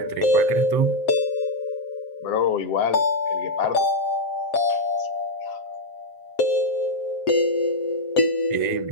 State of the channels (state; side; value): late; right; 7.5 ms